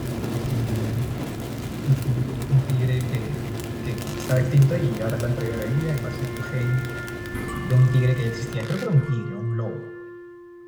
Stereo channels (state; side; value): identical; both; correlation 1.00